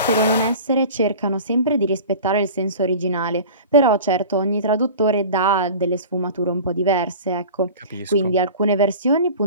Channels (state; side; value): inverted; both; correlation -0.38